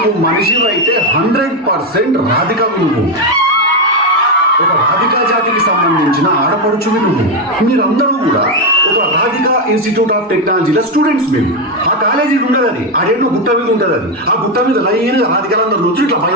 మనిషివి అయితే 100% రాధికవి నువ్వు. ఒక రాధికా జాతికి సంబంధించిన ఆడపడుచువి నువ్వు. మీరందరూ కూడా ఒక రాధికా ఇన్స్టిట్యూట్ ఆఫ్ టెక్నాలజీలో స్టూడెంట్స్ మీరు. ఆ కాలేజీ ఉండదు, అది ఆడేళ్ళు గుట్ట మీద ఉంటుంది. అది ఆ గుట్ట మీద లైన్ రాధికలందరూ రోజు ఇట్లా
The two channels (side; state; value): both; normal; correlation 0.07